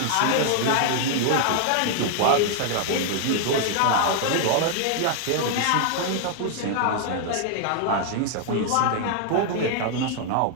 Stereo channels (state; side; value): different; both; correlation 0.00